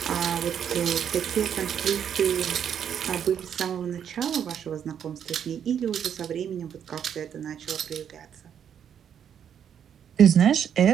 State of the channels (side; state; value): left; quieter; 8.6 dB